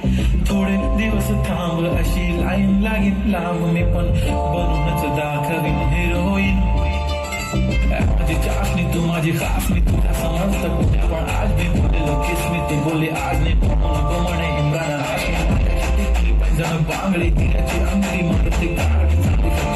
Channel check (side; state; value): both; identical; correlation 1.00